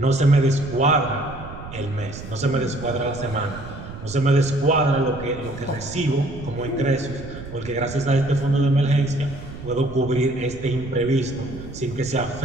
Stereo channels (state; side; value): noise; right; rumble, 13 dB below the sound